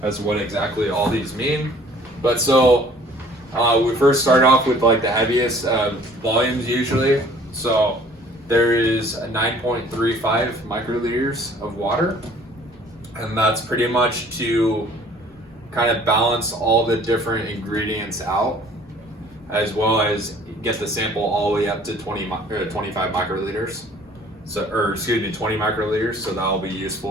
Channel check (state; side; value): normal; both; correlation 0.54